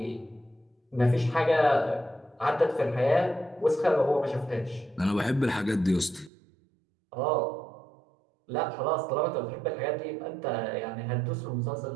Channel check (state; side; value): drops out; left; at 6.3 s